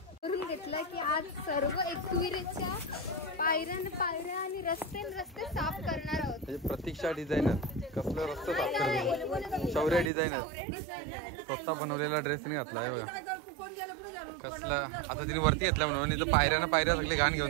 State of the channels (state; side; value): drops out; left; at 10.1 s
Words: करून घेतलं की आज सर्व एकविरेच्या पायऱ्या आणि रस्ते साफ करणार आहोत. म्हणजे प्रतीक्षा डिझायनर कसलं रस्ते साफ करते. शौर्य डिझायनर स्वतः बनवलेला ड्रेस नाही घातला आहे बघा. कसला आता तिने वरती घेतला म्हणून. इथं पायऱ्या सगळे घाण